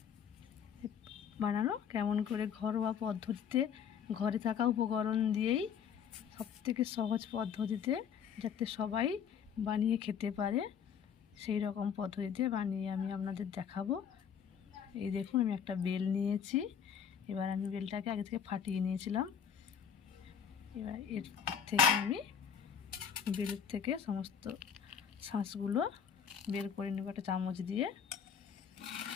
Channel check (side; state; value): right; quieter; 7.7 dB